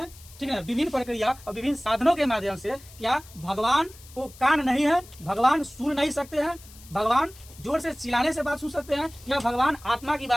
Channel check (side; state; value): left; noise; hiss, 21 dB below the sound